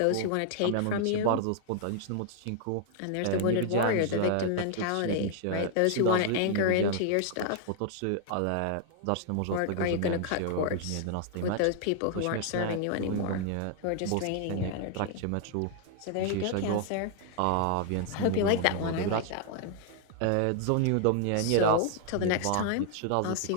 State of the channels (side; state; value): both; different; correlation 0.00